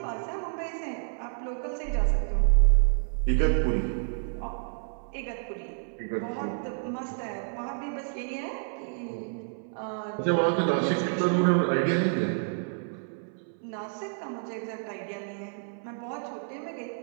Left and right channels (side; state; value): left; silent; 58 dB below the other